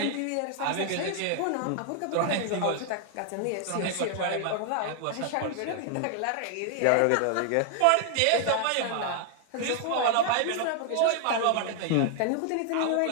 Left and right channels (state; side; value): different; both; correlation 0.00